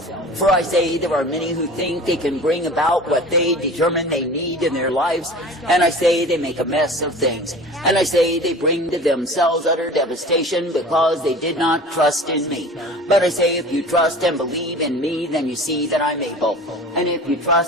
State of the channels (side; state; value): both; normal; correlation 0.39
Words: For I say there are many who think they can bring about what they determine they need in their lives, and I say they make a mess of things. And I say they bring to themselves utter devastation because they did not trust in me. But I say if you trust and believe in me, then you see that I'm able. And if you